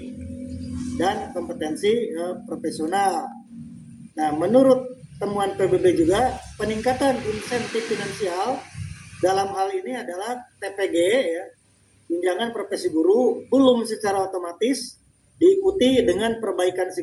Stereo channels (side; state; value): both; identical; correlation 1.00